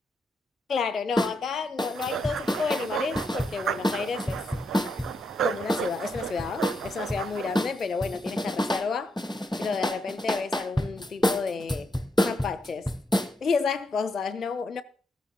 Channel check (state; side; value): normal; both; correlation 0.80